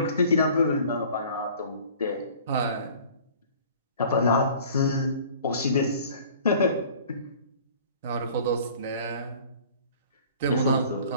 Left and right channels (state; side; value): inverted; both; correlation -0.49